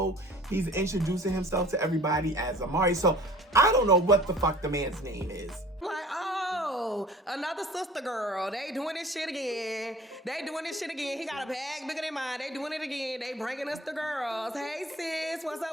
He's introducing himself to everybody as Amari. So I don't know what the fuck the man's name is. Like, oh, another sister girl. They doing this shit again. He got a bag bigger than mine. They doing it again. They bringing us the girls. Hey sis, what's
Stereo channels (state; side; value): normal; both; correlation 0.47